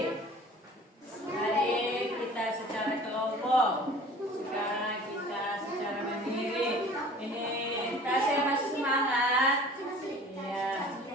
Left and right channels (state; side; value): normal; both; correlation 0.46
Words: Tadi kita secara kelompok. Sekarang kita secara mandiri. Ini kasih masih semangat. Ya.